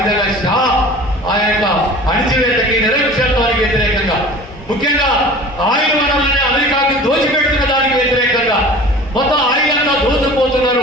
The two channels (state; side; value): normal; both; correlation 0.41